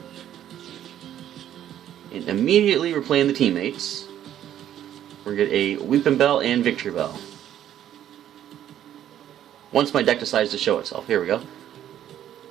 And immediately we're playing the teammates. We're going to get a Weeping Bell and Victreebel. Once my deck decides to show itself. Here we go.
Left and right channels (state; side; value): quieter; left; 11.1 dB